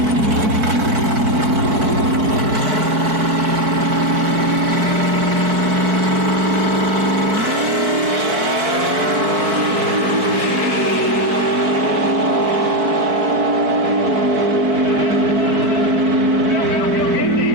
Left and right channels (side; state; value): left; late; 4.6 ms